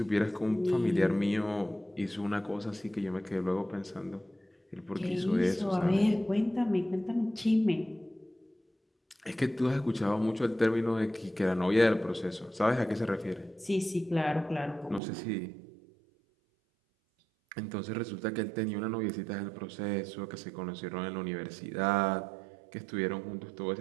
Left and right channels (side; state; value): left; drops out; at 15.0 s